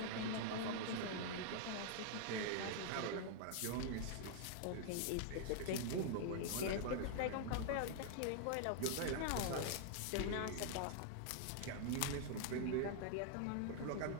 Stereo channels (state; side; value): different; both; correlation 0.00